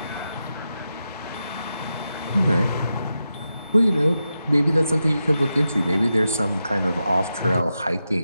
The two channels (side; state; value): both; inverted; correlation -0.89